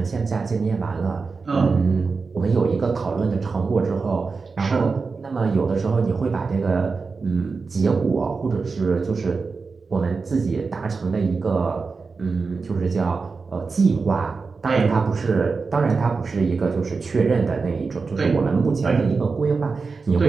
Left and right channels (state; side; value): quieter; left; 4.5 dB